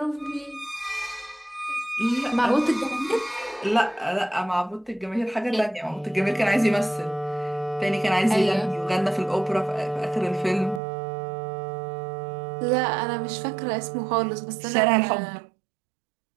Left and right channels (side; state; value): left; drops out; at 10.8 s